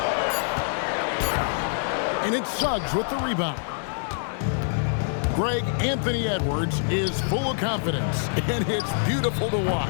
And it's Suggs with the rebound. Greg, Anthony Edwards is full of confidence, and it's beautiful to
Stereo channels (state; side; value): silent; right; digital silence